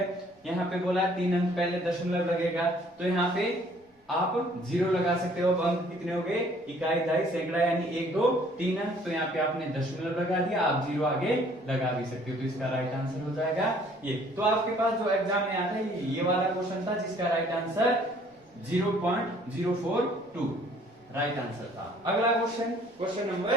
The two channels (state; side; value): normal; both; correlation 0.58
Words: यहाँ पे बोला 3 अंक पहले दशमलव लगेगा, तो यहाँ पे आप 0 लगा सकते हो। अब अंक कितने हो गए, इकाई 2.5 सैकड़ा, यानी 1 2 3 अंक, तो यहाँ पे आपने दशमलव लगा दिया, आप 0 आगे लगा भी सकते हो, तो इसका राइट आंसर हो जाएगा ये। तो आपके पास जो एग्जाम में आता है ये वाला क्वेश्चन था जिसका राइट आंसर 0.042 राइट आंसर था। अगला क्वेश्चन, क्वेश्चन